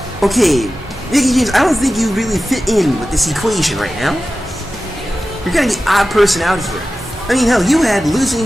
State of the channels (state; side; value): normal; both; correlation 0.95